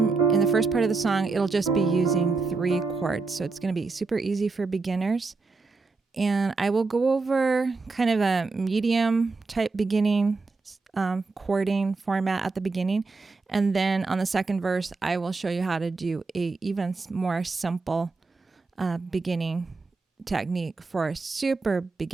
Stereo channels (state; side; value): quieter; left; 4.0 dB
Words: in the first part of the song, it'll just be using 3 chords. So it's going to be super easy for beginners. And I will go over kind of a medium type beginning chording format at the beginning. And then on the second verse, I will show you how to do a even more simple beginning technique for super